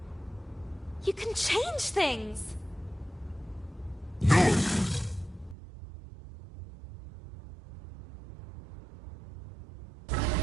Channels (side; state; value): left; drops out; at 5.6 s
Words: You can change things. No!